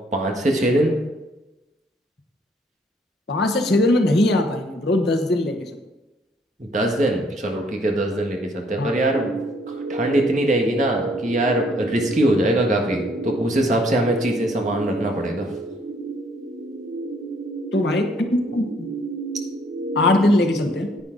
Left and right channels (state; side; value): normal; both; correlation 0.65